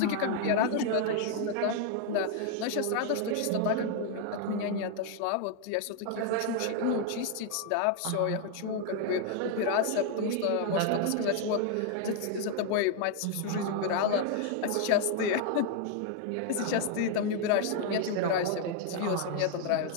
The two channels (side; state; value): both; different; correlation 0.00